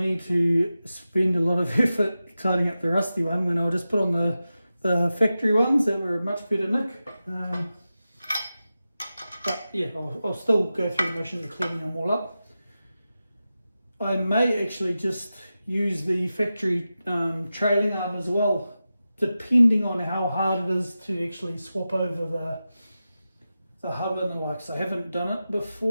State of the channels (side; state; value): both; inverted; correlation -0.93